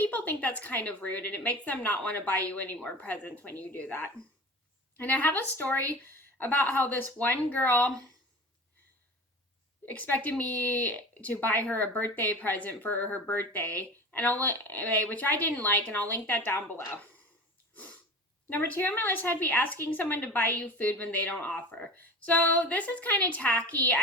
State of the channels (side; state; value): both; normal; correlation 0.35